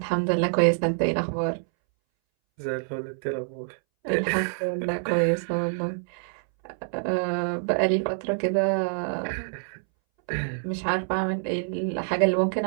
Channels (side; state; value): left; silent; 61 dB below the other